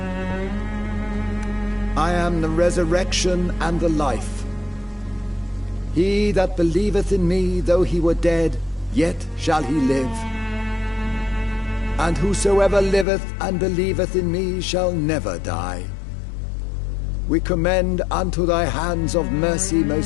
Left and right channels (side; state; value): right; drops out; at 13.1 s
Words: I am the resurrection and the life. He that believeth in me, though he were dead, yet shall he live. And whosoever liveth and believeth in me shall never die. We commend unto thy hands of mercy,